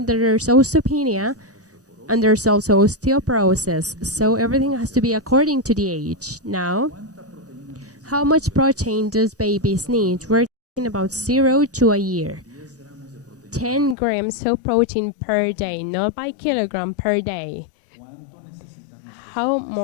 there's osteopenia and there's also osteoporosis. So everything has to be according to the age. Now, how much protein does babies need? We're talking about 0 to a year. 10 grams of protein per day, not by kilogram, per day. How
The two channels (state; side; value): drops out; right; at 14.0 s